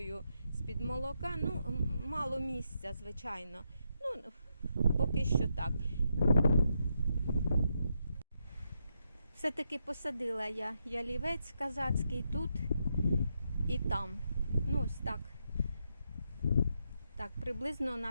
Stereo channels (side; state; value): both; inverted; correlation -0.81